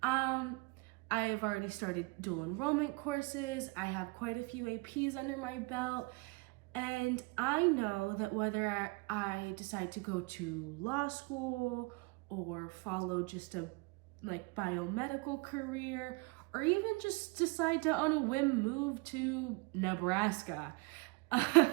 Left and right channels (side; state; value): left; quieter; 27.3 dB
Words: I have already started dual enrollment courses. I have quite a few APs under my belt. And I know that whether I decide to go to law school or follow just a biomedical career, or even just decide to on a whim move to Nebraska,